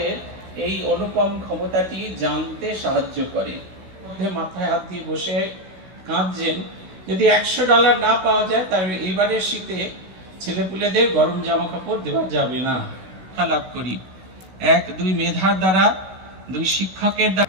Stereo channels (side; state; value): left; late; 16 ms